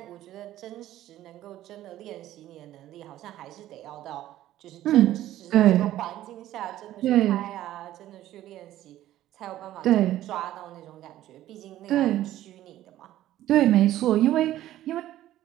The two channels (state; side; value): quieter; left; 13.8 dB